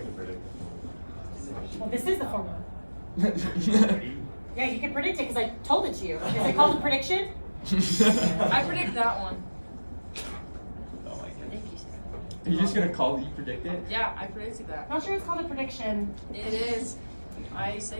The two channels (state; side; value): inverted; both; correlation -1.00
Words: predict. Well, this is the formula. Yeah, you can predict it because I told it to you. Is it called a prediction? I predict that one. Oh my goodness. Are you just gonna call you predict it? Yeah, I predicted that. I'm not sure it's called a prediction. It is. I